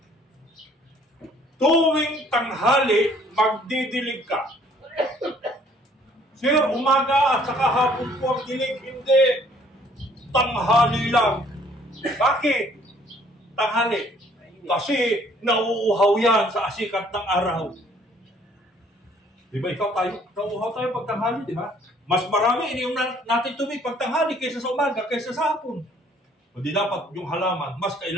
tuwing tanghali, magdidilig ka. Sir, umaga at saka hapon po ang dilig. Hindi. Tanghali lang. Bakit? Tanghali. Kasi nauuhaw yan sa asikat ng araw. Di ba ikaw tayo? Nauuhaw tayo pag tanghali, di ba? Mas marami iniyong natin tubig pag tanghali kaysa sa umaga, kaysa sa hapon. Hindi dapat yung halaman, mas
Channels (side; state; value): both; normal; correlation 0.60